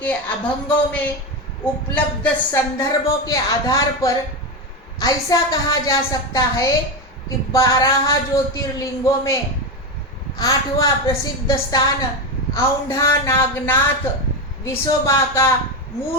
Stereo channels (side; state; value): both; normal; correlation 0.14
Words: अभंगों में उपलब्ध संदर्भों के आधार पर ऐसा कहा जा सकता है कि 12 ज्योतिर्लिंगों में 8वां प्रसिद्ध स्थान औंढा नागनाथ विसोबा का